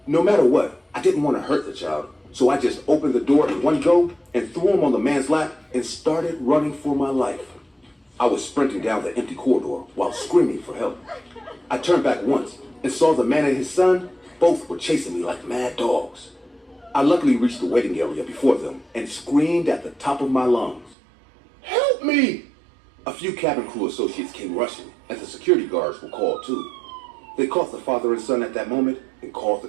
No matter what, I didn't want to hurt the child, so I just opened the door in one go and threw him on the man's lap and started running for my life. I was sprinting down the empty corridor while screaming for help. I turned back once and saw the man and his son. Both were chasing me like mad dogs. I luckily reached the waiting area before them and screamed at the top of my lungs, Help me! A few cabin crew associates came rushing, and the security guards were called too. They caught the father and son at that moment and called the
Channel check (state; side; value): drops out; left; at 21.0 s